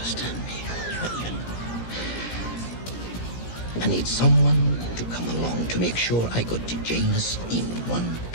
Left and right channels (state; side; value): late; right; 17 ms